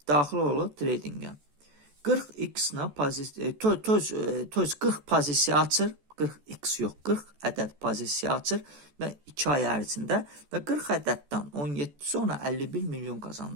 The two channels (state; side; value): late; left; 14 ms